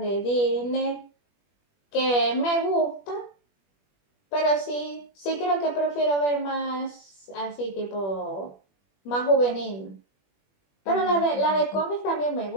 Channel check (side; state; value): right; late; 21 ms